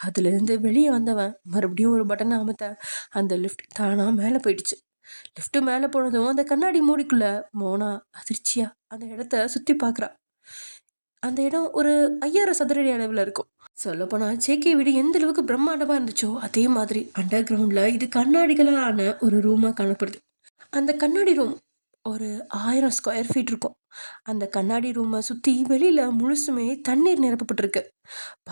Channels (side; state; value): both; inverted; correlation -1.00